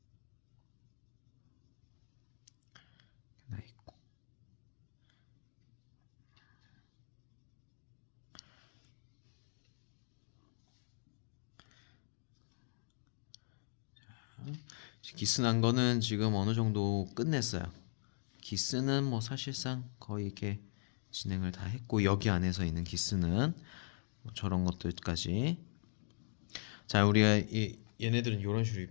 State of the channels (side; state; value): right; silent; digital silence